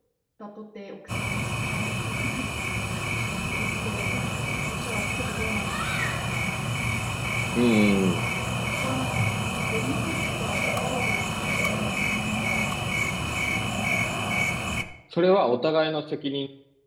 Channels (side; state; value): both; identical; correlation 1.00